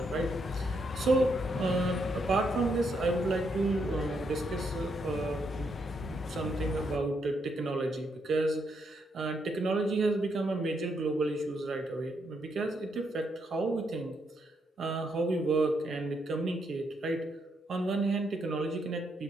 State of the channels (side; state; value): both; normal; correlation 0.77